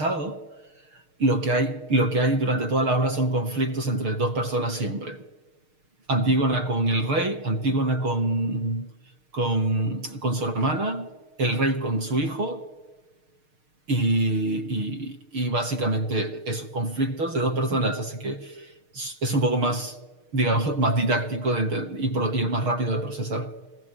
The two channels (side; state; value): left; late; 6.5 ms